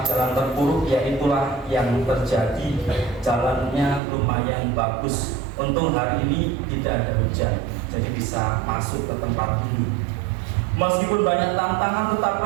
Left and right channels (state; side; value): drops out; left; at 4.0 s